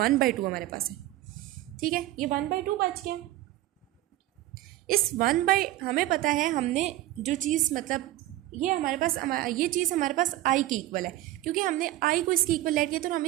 हमारे पास है। ठीक है, ये 1/2 बच गया। इस हमें पता है, हमने जो चीज़ मतलब ये हमारे पास ये चीज़ हमारे पास आई के इक्वल है, क्योंकि हमने आई को इसके इक्वल लेट किया तो हम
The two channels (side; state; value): left; quieter; 15.6 dB